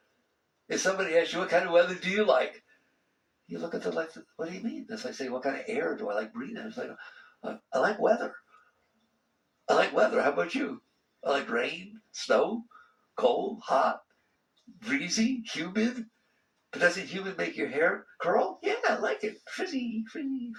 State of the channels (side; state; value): both; identical; correlation 1.00